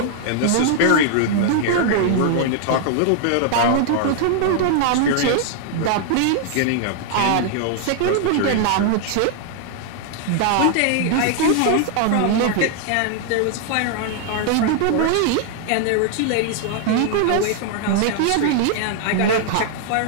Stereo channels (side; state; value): both; different; correlation 0.00